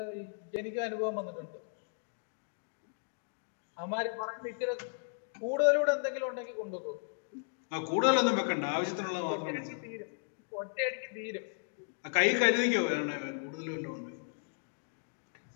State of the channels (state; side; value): silent; right; digital silence